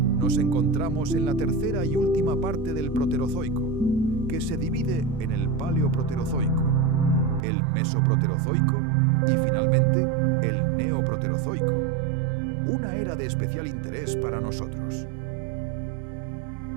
Nos encontramos en la tercera y última parte del Proterozoico, que se divide en el Paleoproterozoico, el Mesoproterozoico y finalmente el Neoproterozoico, una era de especial interés para nosotros.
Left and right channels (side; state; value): left; drops out; at 7.5 s